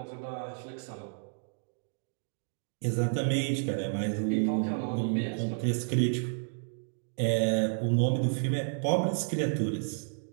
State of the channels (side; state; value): left; silent; digital silence